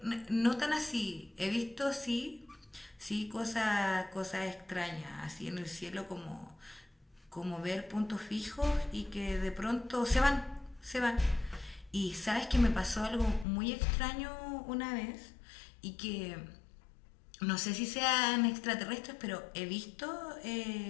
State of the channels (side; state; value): right; drops out; at 13.5 s